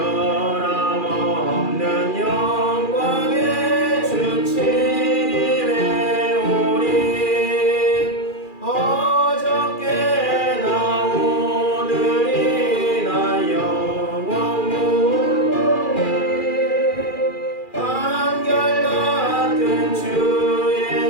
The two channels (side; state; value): right; late; 2.4 ms